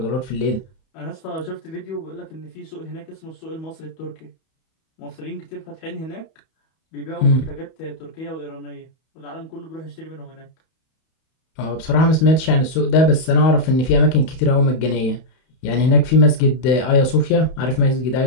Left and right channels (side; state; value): right; late; 31 ms